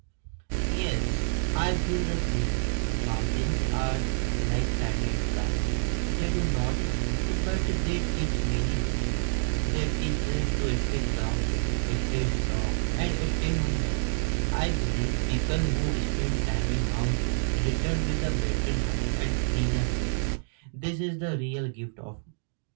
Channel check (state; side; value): silent; left; digital silence